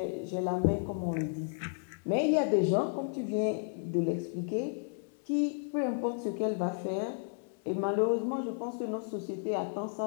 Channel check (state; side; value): silent; right; 56 dB below the other